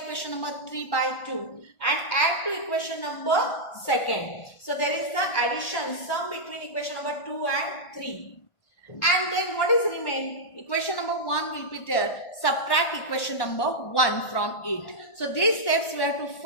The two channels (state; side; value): late; right; 1.5 ms